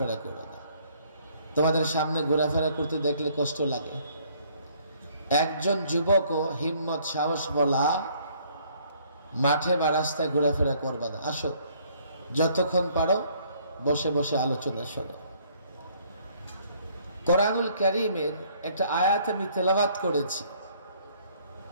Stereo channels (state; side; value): inverted; both; correlation -0.62